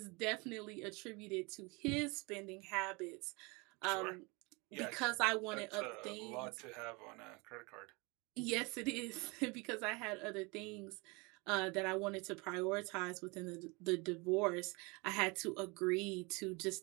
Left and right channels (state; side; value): quieter; left; 27.6 dB